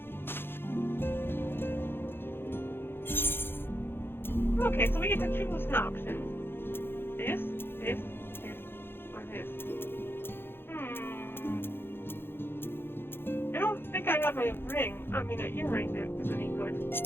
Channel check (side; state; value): right; late; 0.10 ms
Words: Okay, so we get to choose an option. This, or this. I don't think I have a ring. I mean, an earring that is any good.